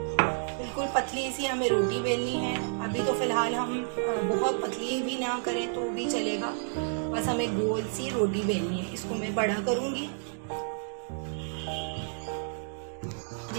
बिल्कुल पतली सी हमें रोटी बेलनी है। अभी तो फिलहाल हम बहुत पतली भी ना करें तो भी चलेगा, बस हमें गोल सी रोटी बेलनी है। इसको मैं बड़ा करूंगी।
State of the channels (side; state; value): left; silent; digital silence